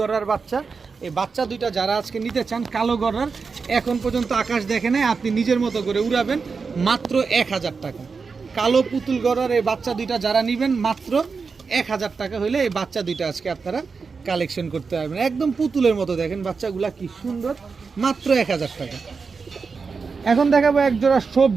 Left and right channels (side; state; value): left; quieter; 5.0 dB